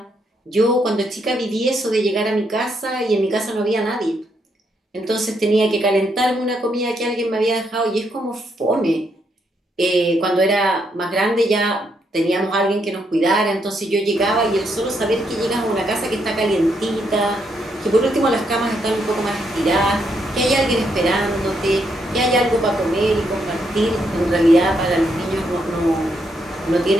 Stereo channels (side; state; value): both; normal; correlation 0.77